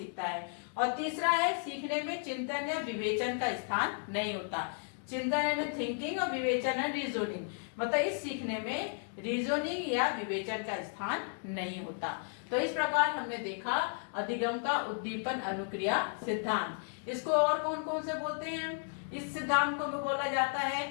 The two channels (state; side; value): silent; right; 55 dB below the other